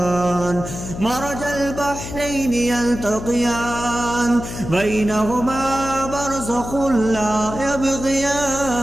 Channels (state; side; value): noise; left; hum, 9 dB below the sound